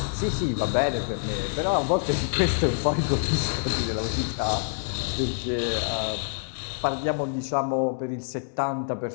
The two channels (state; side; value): silent; right; digital silence